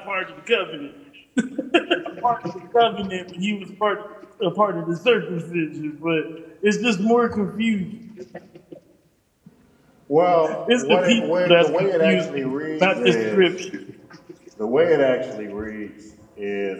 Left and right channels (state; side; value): identical; both; correlation 1.00